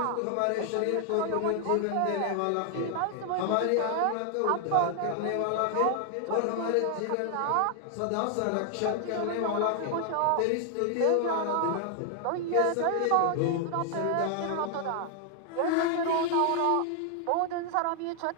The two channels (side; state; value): both; different; correlation 0.00